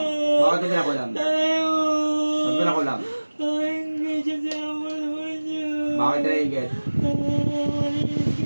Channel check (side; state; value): both; inverted; correlation -1.00